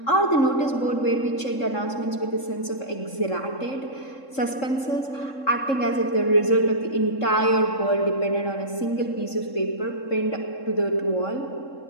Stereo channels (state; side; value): late; right; 3.7 ms